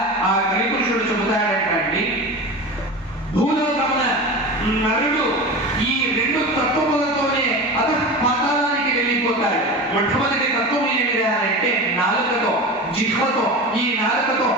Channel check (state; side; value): normal; both; correlation 0.29